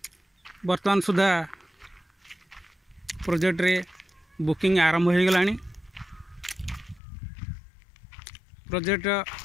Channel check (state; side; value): drops out; right; at 7.0 s